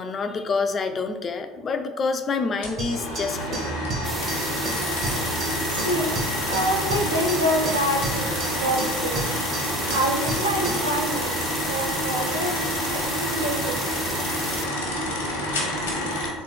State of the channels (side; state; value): both; normal; correlation 0.40